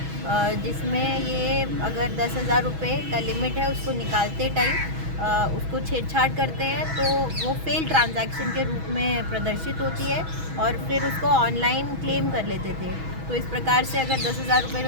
जिसमें ये अगर 10,000 रुपये का लिमिट है उसको निकालते टाइम उसको छेड़छाड़ करते हैं तो वो फेल ट्रांजैक्शन के रूप में प्रदर्शित होती है और फिर उसको ऑनलाइन क्लेम कर लेते थे। तो इस प्रकार से अगर 10,000 रुपये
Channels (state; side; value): late; left; 6.2 ms